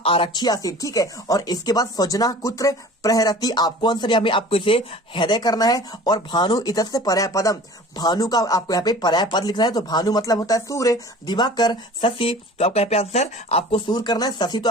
आसीत। ठीक है, और इसके बाद स्वजना कुत्र प्रहरती, आपको आंसर यहाँ पे आपको इसे हृदय करना है। और भानु इतस्य पर्याय पदम, भानु का आपको यहाँ पे पर्याय पद लिखना है। तो भानु मतलब होता है सूर्य, दिवाकर, शशि, तो आपका यहाँ पे आंसर आपको सूर्य करना है। शशि तो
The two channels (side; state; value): both; normal; correlation 0.43